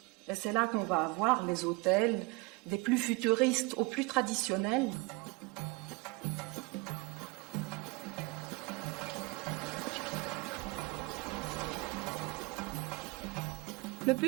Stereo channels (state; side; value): quieter; left; 25.9 dB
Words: Et c'est là qu'on va avoir les hôtels des plus futuristes aux plus traditionnels. Le